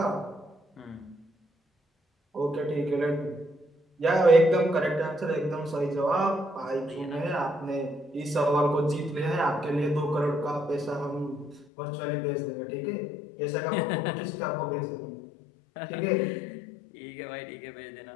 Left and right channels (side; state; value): right; drops out; at 11.7 s